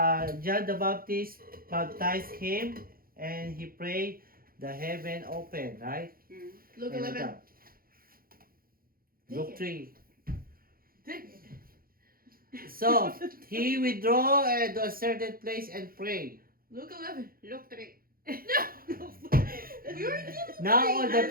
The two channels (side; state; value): left; late; 0.42 ms